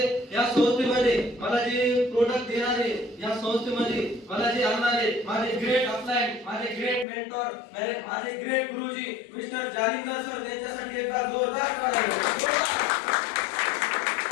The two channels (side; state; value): right; drops out; at 7.1 s